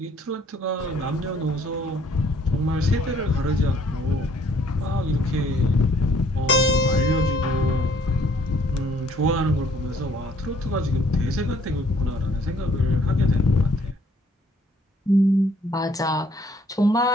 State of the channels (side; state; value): both; normal; correlation 0.62